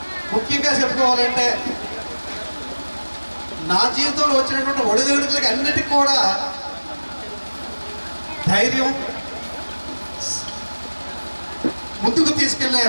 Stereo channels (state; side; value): inverted; both; correlation -1.00